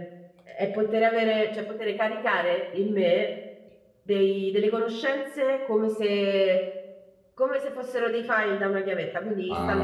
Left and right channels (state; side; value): identical; both; correlation 1.00